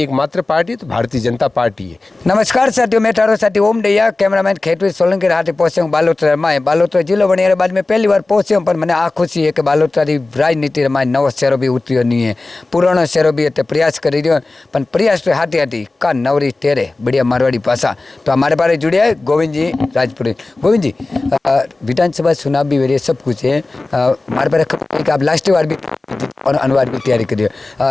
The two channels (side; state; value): right; quieter; 3.2 dB